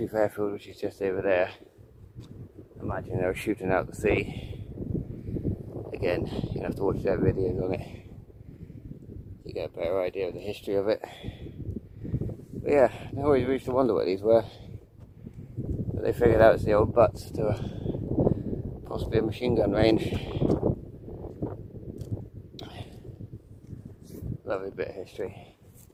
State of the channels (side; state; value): both; identical; correlation 1.00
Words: airfield, which is just over there. Imagine they were shooting out the sea. Again, you have to watch their videos on it to get a better idea of the history of it. But yeah, I always used to wonder what these were. But they figured out it's the old butts to possibly a machine gun range. Lovely bit of history.